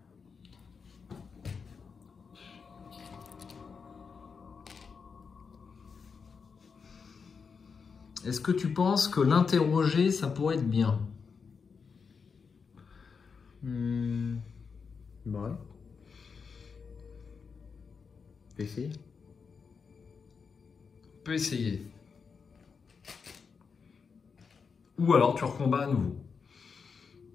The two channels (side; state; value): right; quieter; 5.6 dB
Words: Est-ce que tu penses que l'interroger, ça pourrait être bien? Ouais. On peut essayer. On peut essayer. Ou alors tu recombats à nouveau.